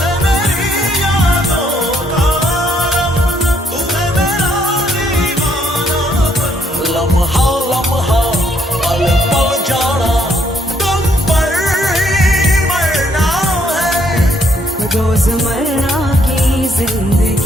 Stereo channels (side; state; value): both; normal; correlation 0.70